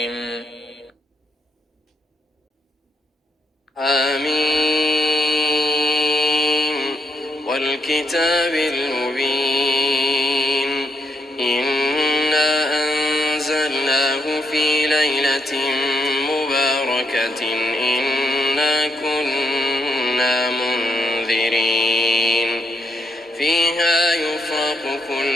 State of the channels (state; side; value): normal; both; correlation 0.78